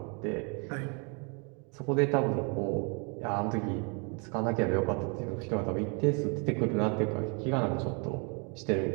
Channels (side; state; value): left; quieter; 34.7 dB